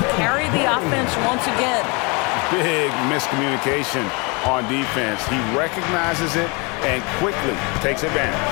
carry the offense once again. Big miscommunication on defense. He recognizes it and quickly takes advantage.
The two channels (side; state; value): right; quieter; 30.0 dB